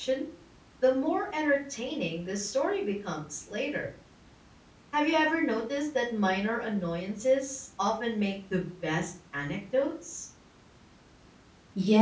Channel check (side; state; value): both; identical; correlation 1.00